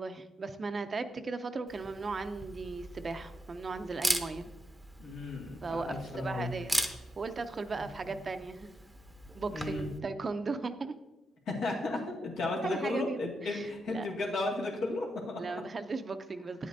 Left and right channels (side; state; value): both; normal; correlation 0.84